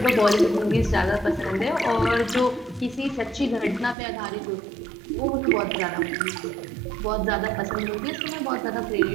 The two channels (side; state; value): left; drops out; at 4.0 s